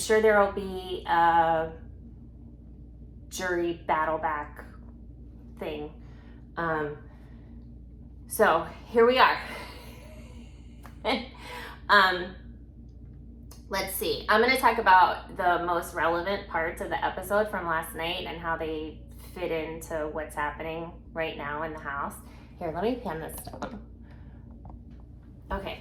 there will be a jury battle back thing. So here we are. Let's see. I'm going to talk about the most relevant parts of the episode from last night and how they fit into what's happening right now in the house. Here, let me pen this down.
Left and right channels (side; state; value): both; identical; correlation 1.00